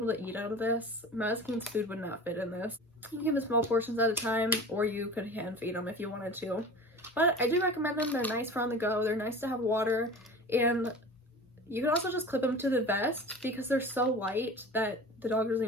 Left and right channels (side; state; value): both; normal; correlation 0.37